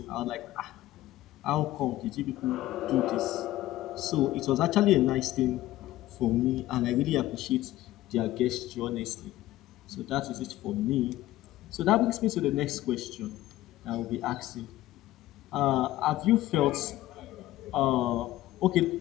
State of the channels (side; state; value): right; quieter; 15.7 dB